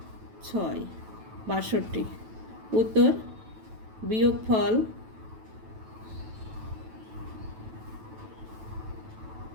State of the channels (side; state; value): left; late; 9.1 ms